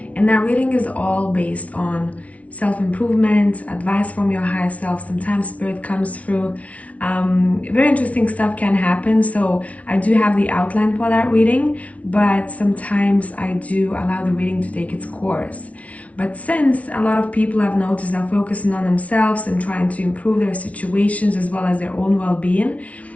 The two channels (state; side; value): late; right; 0.066 ms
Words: And that reading is all based on self-improvement, advice from your higher self. Sometimes spirit comes through. Very interesting stuff can happen. So I do have the outline for that reading, but sometimes I do allow the reading to take its course. But since a lot of people I've noticed are focusing on themselves and trying to improve their situations as well as their own well-being,